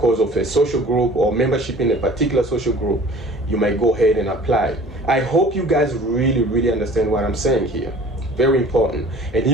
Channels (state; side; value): normal; both; correlation 0.47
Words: of a social group or membership in a particular social group. You might go ahead and apply. I hope you guys really understand what I'm saying here. Very important. And